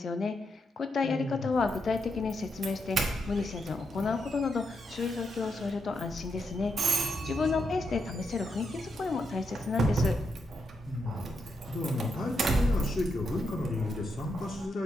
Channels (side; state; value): both; normal; correlation 0.82